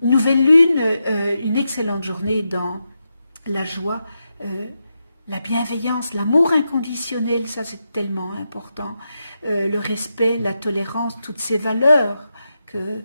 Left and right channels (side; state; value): both; inverted; correlation -0.87